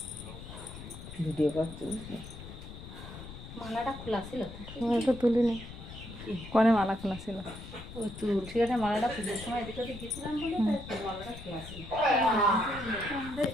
ভিডিও করতে মালাটা খোলা ছিল তো তুলিনি কনে মালা খোলা ছিল ওই তুলসী গাছের মালাটা পুজোর সময় এদিকে ওদিকে গেছিলাম বলে তাই মালাটা খোলা ছিল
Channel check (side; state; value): left; noise; rumble, 13 dB below the sound